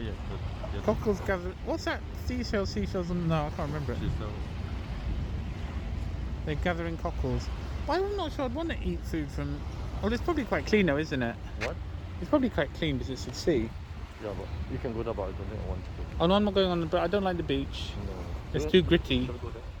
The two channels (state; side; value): identical; both; correlation 1.00